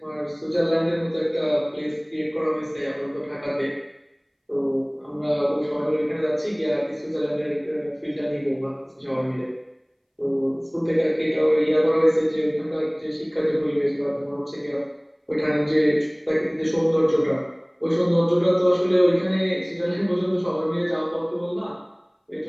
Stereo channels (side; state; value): both; identical; correlation 1.00